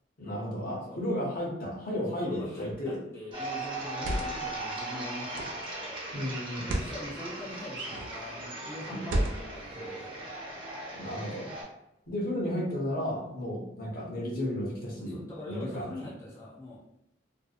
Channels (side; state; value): both; normal; correlation 0.49